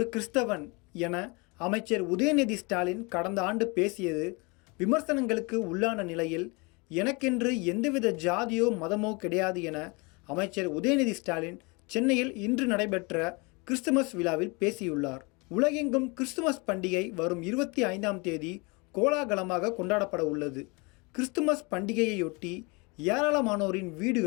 கிறிஸ்தவன் என அமைச்சர் உதயநிதி ஸ்டாலின் கடந்த ஆண்டு பேசியது விமர்சனங்களுக்கு உள்ளான நிலையில் எனக்கென்று எந்தவித ஜாதியோ மதமோ கிடையாது என அமைச்சர் உதயநிதி ஸ்டாலின் சென்னையில் இன்று நடைபெற்ற கிறிஸ்துமஸ் விழாவில் பேசியுள்ளார். உலகெங்கும் கிறிஸ்துமஸ் பண்டிகை வரும் 25ஆம் தேதி கோலாகலமாக கொண்டாடப்பட உள்ளது. கிறிஸ்துமஸ் பண்டிகையையொட்டி ஏராளமானோரின்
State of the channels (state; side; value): quieter; right; 28.8 dB